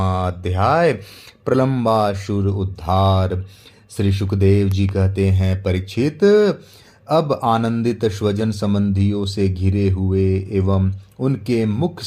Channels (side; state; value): both; identical; correlation 1.00